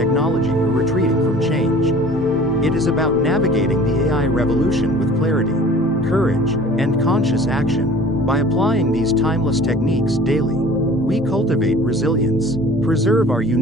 or retreating from change. It is about navigating the AI revolution with clarity, courage, and conscious action. By applying these timeless techniques daily, we cultivate resilience, preserve our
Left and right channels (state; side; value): normal; both; correlation 0.46